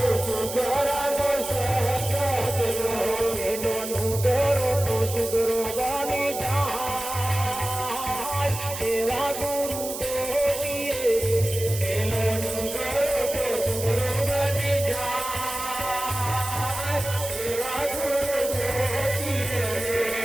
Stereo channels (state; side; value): noise; right; hiss, 8 dB below the sound